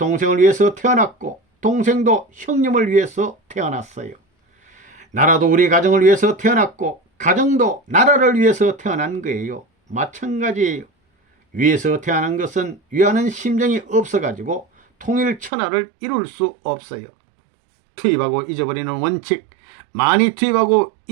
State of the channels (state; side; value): drops out; left; at 15.5 s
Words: 위해서 태어났고 동생도 형님을 위해서 태어났어요. 나라도 우리 가정을 위해서 태어났고 가정도 나라를 위해서 태어난 거예요. 마찬가지예요. 위에서 태어난 것은 위하는 심정이 없어가지고 통일천하를 이룰 수 없어요. 투입하고 잊어버리는 원칙, 많이 투입하고